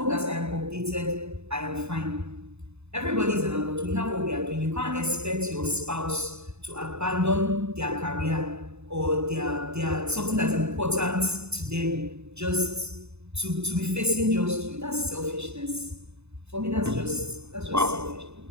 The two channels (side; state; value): left; late; 0.81 ms